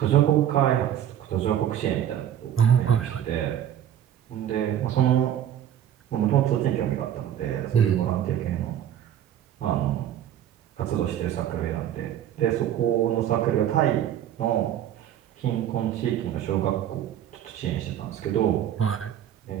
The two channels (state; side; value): quieter; left; 10.7 dB